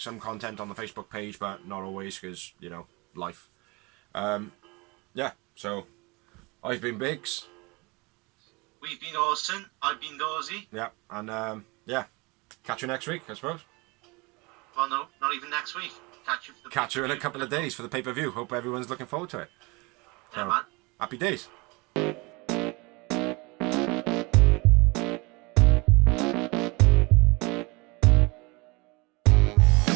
content on the Facebook page, but not always because, you know, life. Yeah, so I've been Biggs. We've been Orson. I've been Dorsey. Yeah, and yeah, catch you next week, I suppose. Well, no, not even next week. Catch you in a couple of days for the pay-per-view. Hope everyone's looking forward to it. Yeah, So, man. happy days.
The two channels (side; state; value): left; quieter; 26.2 dB